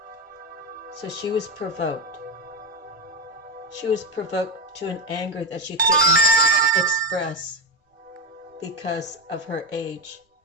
So she was provoked. She was provoked to an anger that she couldn't express because of her age,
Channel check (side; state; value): both; normal; correlation 0.13